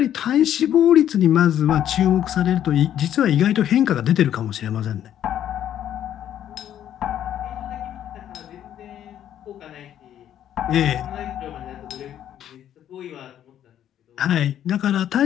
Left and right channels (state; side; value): quieter; right; 10.7 dB